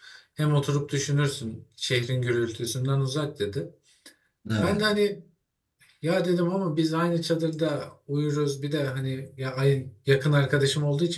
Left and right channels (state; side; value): identical; both; correlation 1.00